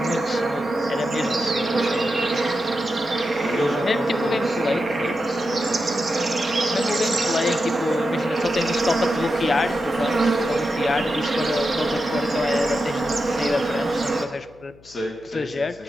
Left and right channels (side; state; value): left; noise; hum, 25 dB below the sound